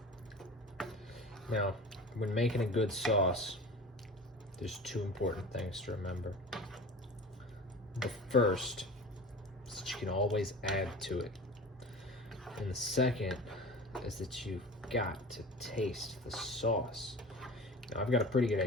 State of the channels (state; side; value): normal; both; correlation 0.36